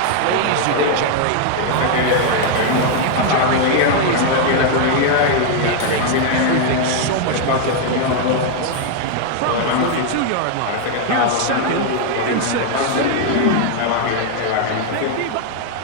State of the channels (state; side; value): different; both; correlation 0.00